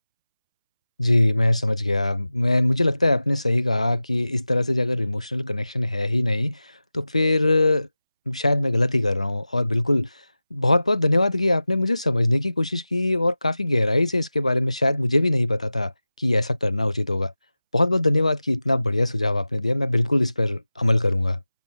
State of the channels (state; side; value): inverted; both; correlation -0.96